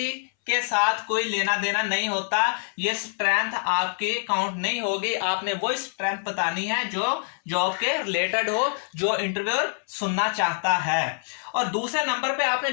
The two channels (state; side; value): silent; right; 61 dB below the other